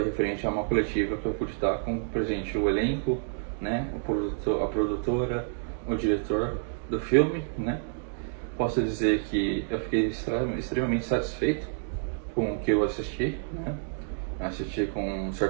referente a uma coletiva que eu pude estar com presente o elenco, né, a produtora, o diretor do filme, né? Posso dizer que eu fiquei extremamente satisfeito com o que eu assisti, né? Assisti com um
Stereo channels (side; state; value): left; silent; digital silence